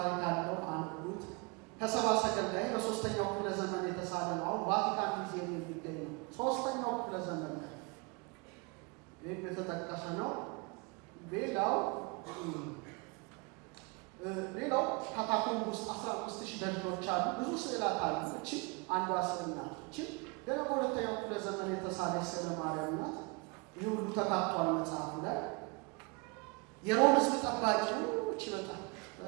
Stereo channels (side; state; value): left; quieter; 30.2 dB